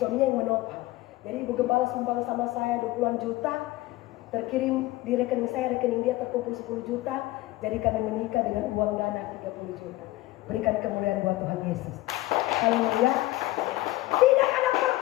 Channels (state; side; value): quieter; right; 18.2 dB